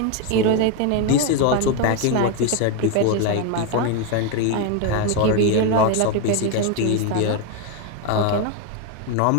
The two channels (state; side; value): different; both; correlation 0.02